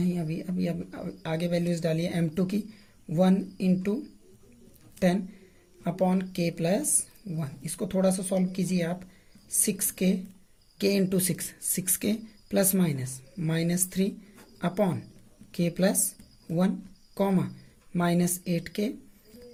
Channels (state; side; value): identical; both; correlation 1.00